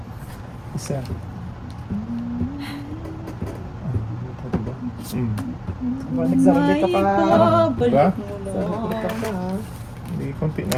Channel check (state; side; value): identical; both; correlation 1.00